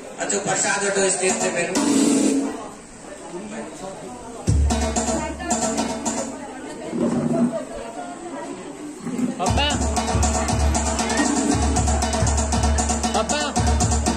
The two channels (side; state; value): both; identical; correlation 1.00